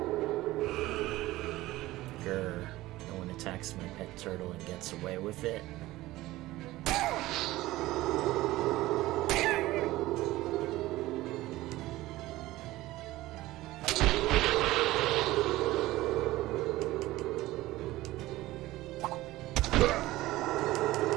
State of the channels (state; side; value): quieter; left; 17.4 dB